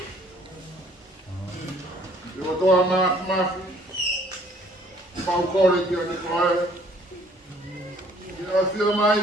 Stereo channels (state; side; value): normal; both; correlation 0.59